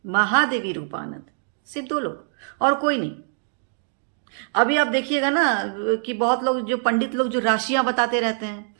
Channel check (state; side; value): silent; left; 63 dB below the other